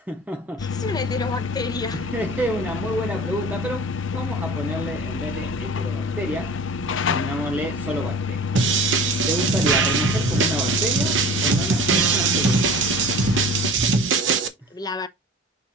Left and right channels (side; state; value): both; normal; correlation 0.40